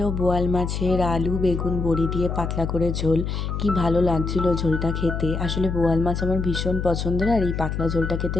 বোয়াল মাছের আলু বেগুন বড়ি দিয়ে পাতলা করে ঝোল। কি ভালো লাগছিল ঝোলটা খেতে, আসলে বোয়াল মাছ আমার ভীষণ পছন্দের, আর এই পাতলা ঝোলটা খেতে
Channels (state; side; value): noise; left; hum, 3 dB below the sound